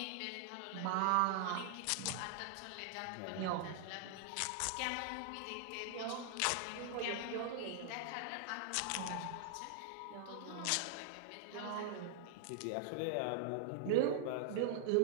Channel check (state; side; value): different; both; correlation 0.00